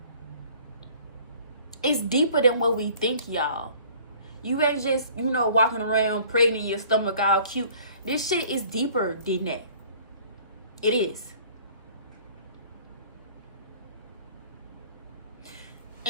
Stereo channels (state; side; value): inverted; both; correlation -0.52